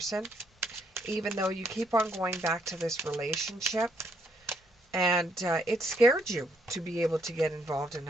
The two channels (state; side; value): normal; both; correlation 0.72